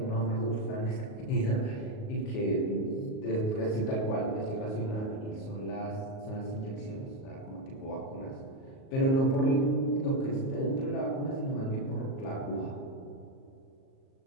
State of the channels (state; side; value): late; right; 38 ms